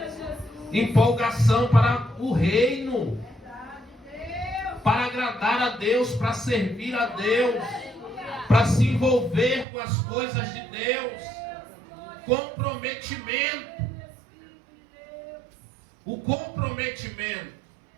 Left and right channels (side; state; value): left; drops out; at 9.7 s